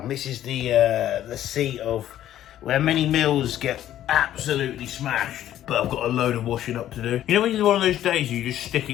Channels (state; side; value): quieter; right; 12.2 dB